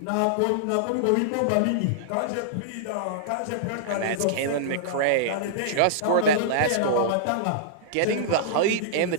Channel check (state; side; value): different; both; correlation -0.02